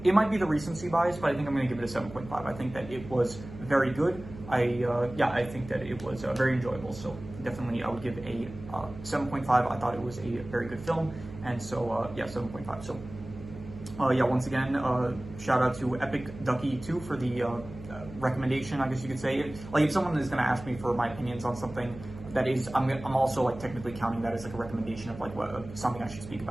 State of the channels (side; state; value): right; noise; hum, 14 dB below the sound